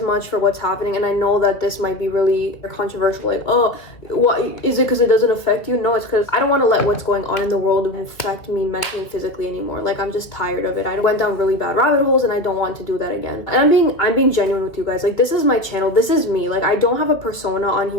much for what's happening, and I know that this might be really controversial, like, oh, what is it because it doesn't affect you? No, it's because I don't want to let what's going on in the world affect me mentally and physically anymore. Like, I'm just tired of it. I went down really bad rabbit holes, and I don't want to do that again. And I'm being genuine with you guys. Like, this is my channel. This is me. Like, I don't have a persona on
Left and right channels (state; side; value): late; right; 2.2 ms